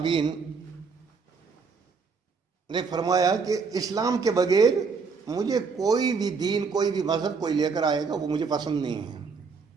نے فرمایا کہ اسلام کے بغیر مجھے کوئی بھی دین، کوئی بھی مذہب کوئی لے کر آئے گا وہ مجھے پسند نہیں ہے۔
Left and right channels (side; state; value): left; quieter; 5.1 dB